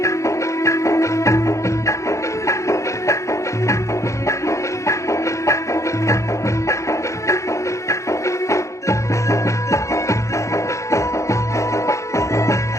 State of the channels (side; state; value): right; late; 0.15 ms